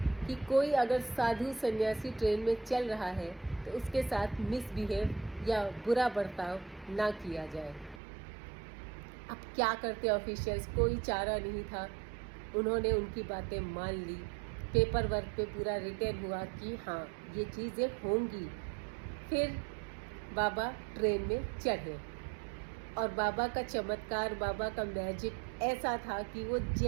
कि कोई अगर साधु सन्यासी ट्रेन में चल रहा है तो उसके साथ मिसबिहेव या बुरा बर्ताव ना किया जाए। अब क्या करते ऑफिशियल्स, कोई चारा नहीं था, उन्होंने उनकी बातें मान ली। पेपर वर्क पे पूरा रिटर्न हुआ कि हाँ ये चीज़ें होंगी। फिर बाबा ट्रेन में चढ़े और बाबा का चमत्कार, बाबा का मैजिक ऐसा था कि वो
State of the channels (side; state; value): left; drops out; at 8.0 s